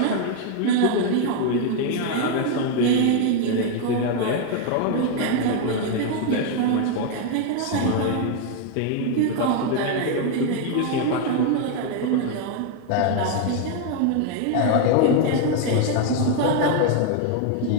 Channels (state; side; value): different; both; correlation 0.01